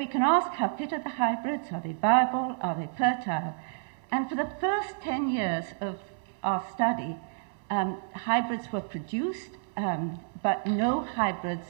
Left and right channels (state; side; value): silent; left; digital silence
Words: can ask, how fit are the hybrids? Are they viable? Are they fertile? And for the first 10 years of our study, hybrids were produced, but no hybrids